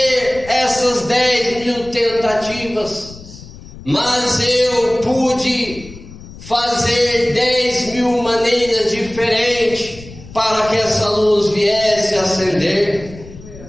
essas 10.000 tentativas, mas eu pude fazer 10.000 maneiras diferentes para que essa luz viesse a acender.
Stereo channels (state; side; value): noise; left; rumble, 17 dB below the sound